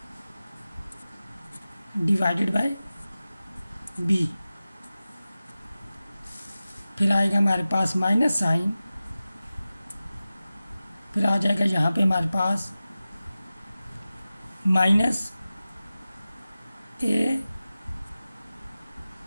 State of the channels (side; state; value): both; inverted; correlation -0.95